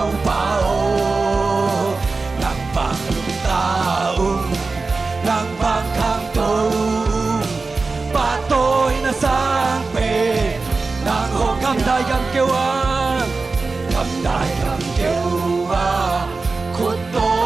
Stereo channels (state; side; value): quieter; left; 3.9 dB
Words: bao nàng vàng ta nàng vàng khang tu ba tôi là sang về nàng hồng cầm đại cầm kêu khút tô